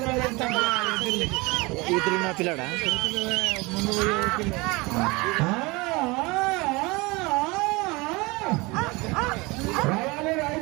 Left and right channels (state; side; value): quieter; left; 24.6 dB